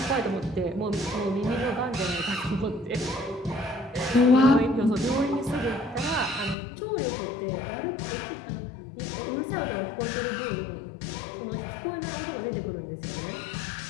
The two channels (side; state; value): right; drops out; at 6.6 s